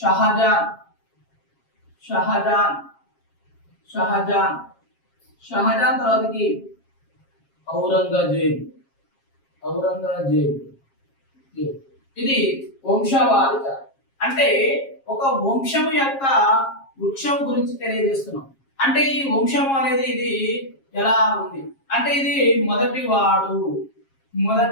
షాజహాన్ షాజహాన్ షాజహాన్ తర్వాతకి ఔరంగజేబ్ ఔరంగజేబ్. ఇది వంశవాళి చార్ట్. అంటే ఒక వంశము యొక్క వృక్షం గురించి తెలియజేస్తున్నాం. అంటే ఈ వంశం అనేది ఇది ఎలా ఉంది అంటే ఇది మొదటివాడు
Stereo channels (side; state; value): right; late; 7.4 ms